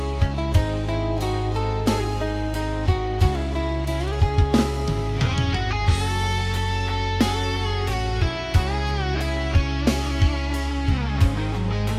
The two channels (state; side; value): identical; both; correlation 1.00